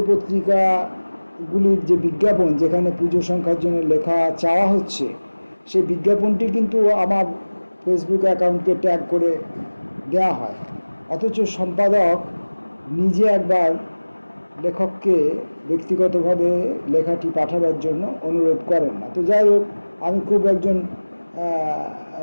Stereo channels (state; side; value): inverted; both; correlation -1.00